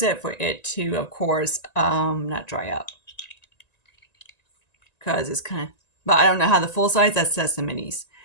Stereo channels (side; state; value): right; late; 1.9 ms